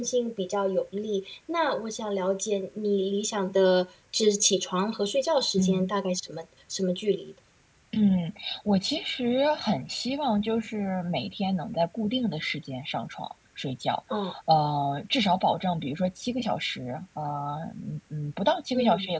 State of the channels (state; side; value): identical; both; correlation 1.00